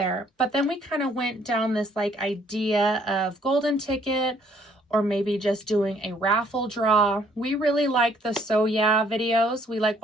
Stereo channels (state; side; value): normal; both; correlation 0.64